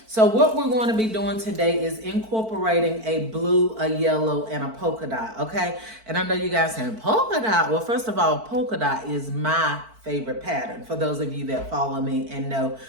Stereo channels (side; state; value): left; late; 4.5 ms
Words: So what we're going to be doing today is incorporating a blue, a yellow, and a polka dot, okay? And I know you guys saying, polka dot? Well, first of all, polka dot is my favorite pattern. For those of you that follow me and know